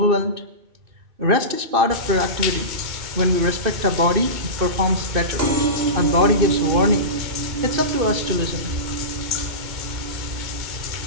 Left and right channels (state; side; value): late; left; 2.6 ms